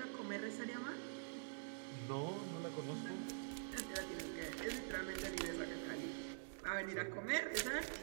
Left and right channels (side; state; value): left; silent; digital silence